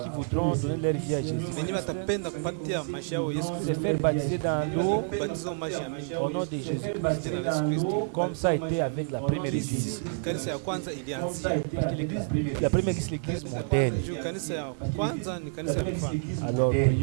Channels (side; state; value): left; silent; 57 dB below the other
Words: voudront donner leur vie à Jésus, wenyewe watapenda kupatia maisha yao Yesu se Kristo, faire baptiser dans l'eau kubatizo maji ya mimi au nom de Jésus-Christ, jina la Yesu Kristo. comme ça a été avec la première église. Kanisa ya kwanza ilianzia Parce que l'église, la première église, c'est l'église modèle. juu, kanisa ya kwanza ni kanisa ya mfano. Alors,